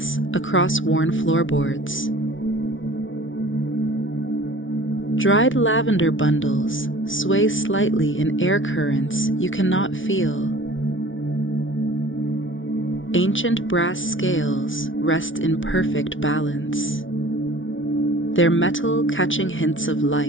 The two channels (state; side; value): late; right; 0.56 ms